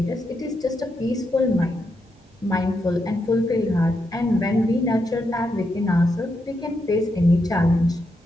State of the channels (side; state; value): both; normal; correlation 0.83